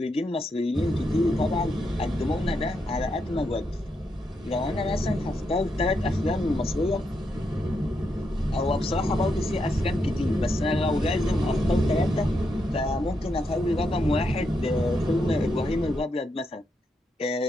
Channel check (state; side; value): normal; both; correlation 0.82